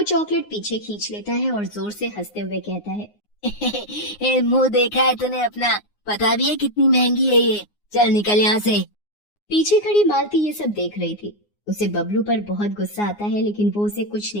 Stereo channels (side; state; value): right; late; 9.6 ms